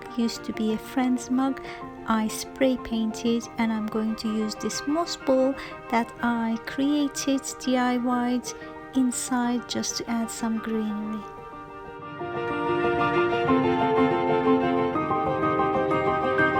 used to be a friend's mug. I spray painted, and I'm going to use this moss ball that I created, DIY'd inside, just to add some greenery.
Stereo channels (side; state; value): both; identical; correlation 1.00